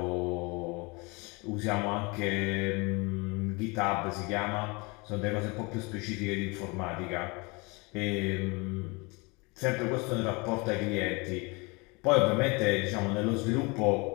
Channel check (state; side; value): quieter; right; 27.7 dB